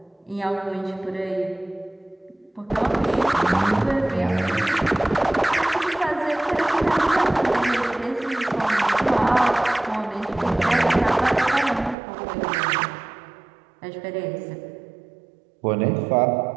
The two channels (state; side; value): drops out; left; at 12.0 s